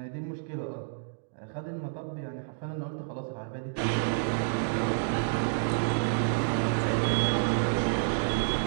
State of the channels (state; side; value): silent; left; digital silence